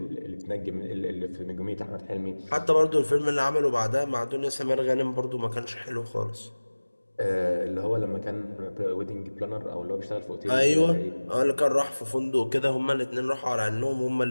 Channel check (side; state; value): both; inverted; correlation -1.00